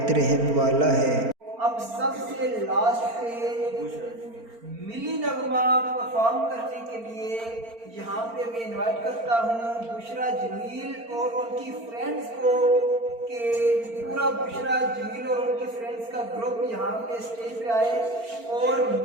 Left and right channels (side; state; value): left; late; 4.4 ms